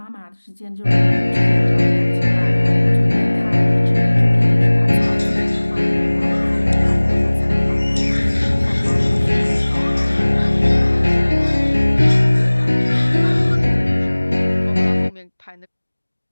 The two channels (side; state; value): both; inverted; correlation -1.00